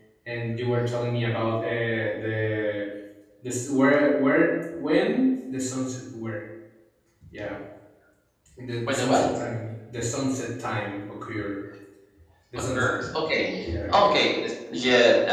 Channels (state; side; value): identical; both; correlation 1.00